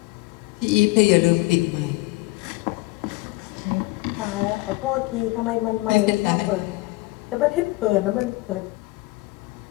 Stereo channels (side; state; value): right; quieter; 22.1 dB